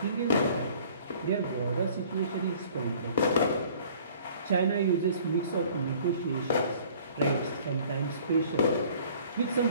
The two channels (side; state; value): both; inverted; correlation -0.53